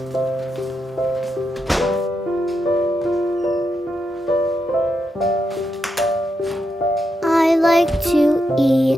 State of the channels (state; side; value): normal; both; correlation 0.84